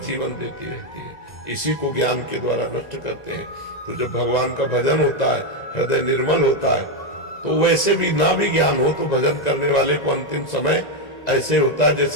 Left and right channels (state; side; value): late; right; 1.9 ms